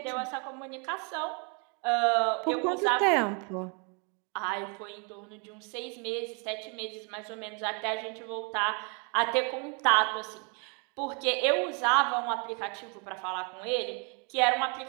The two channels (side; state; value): left; quieter; 35.6 dB